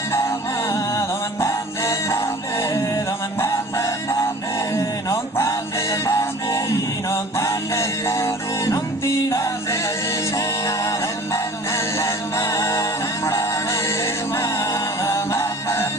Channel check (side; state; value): both; normal; correlation 0.45